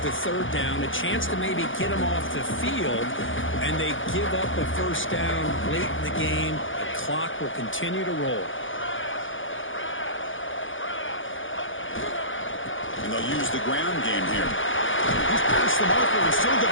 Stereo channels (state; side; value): late; right; 0.57 ms